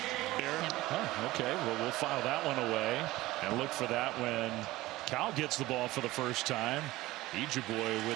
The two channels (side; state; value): left; quieter; 18.1 dB